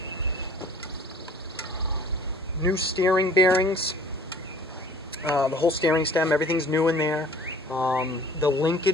New steering bearings, the whole steering stem, everything's new in there. The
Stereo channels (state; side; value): normal; both; correlation 0.50